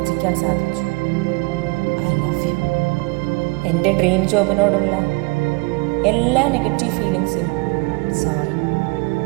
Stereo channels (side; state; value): left; quieter; 28.0 dB